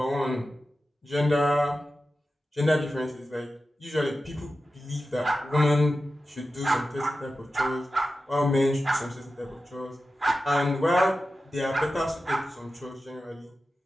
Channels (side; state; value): both; normal; correlation 0.93